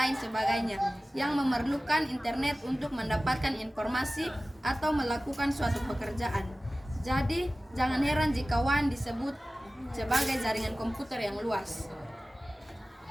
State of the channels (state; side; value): normal; both; correlation 0.96